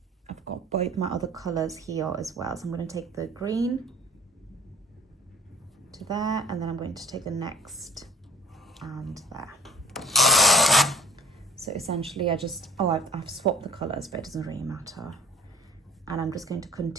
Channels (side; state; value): both; normal; correlation 0.49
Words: both my other colors here as well. So I'm going to take the green to there, and then I'm going to take the next and there. So essentially I've swapped the colors, but it doesn't really matter. And I'm just going to